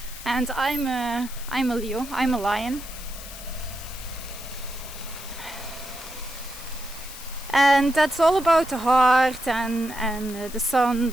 And I'm a Leo. I'm a lion. And that's all about the heart and the sun,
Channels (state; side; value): noise; left; hiss, 13 dB below the sound